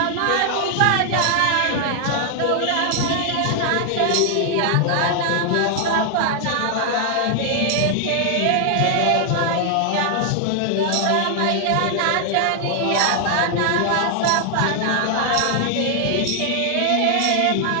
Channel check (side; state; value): both; different; correlation 0.00